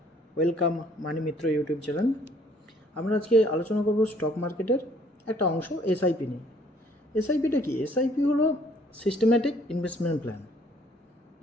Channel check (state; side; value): normal; both; correlation 0.61